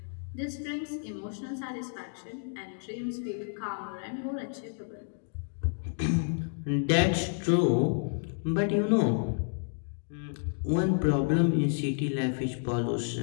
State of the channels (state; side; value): silent; right; digital silence